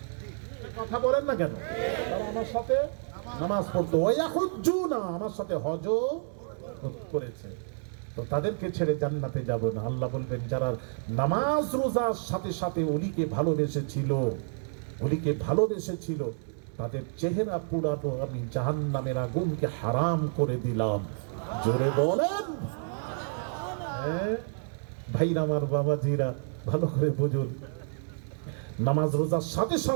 কথা বলেন না কেন? তারা আমার সাথে নামাজ পড়তো, ওয়া ইয়াহুজ্জুনা, আমার সাথে হজও করেছে। তো তাদেরকে ছেড়ে জান্নাতে যাব না। আল্লাহ বলবেন, যারা নামাজ রোজার সাথে সাথে ওলিকে ভালোবেসেছিল তাদের চেহারা পুরানো আমি জাহান্নামের আগুনকে হারাম করে দিলাম। জোরে বলেন। ভাইরা আমার, বাবাজিরা, ভালো করে বুঝুন, নামাজ রোজার সাথে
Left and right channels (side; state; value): left; silent; digital silence